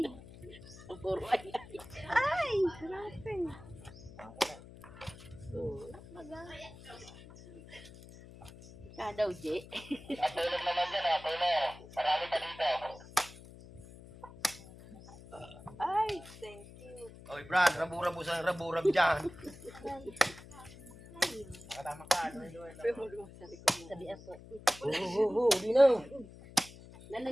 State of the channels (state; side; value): noise; left; hum, 18 dB below the sound